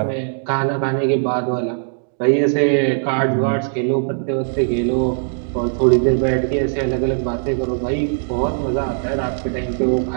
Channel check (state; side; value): silent; left; digital silence